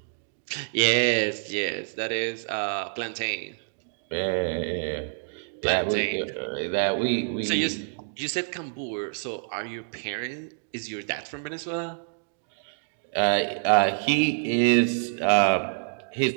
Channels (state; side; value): silent; left; digital silence